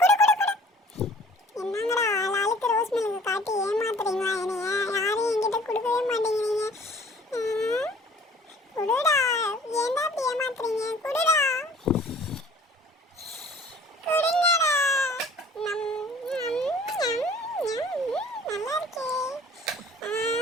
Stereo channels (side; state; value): both; normal; correlation 0.52